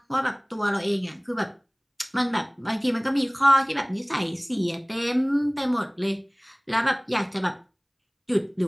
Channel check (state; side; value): identical; both; correlation 1.00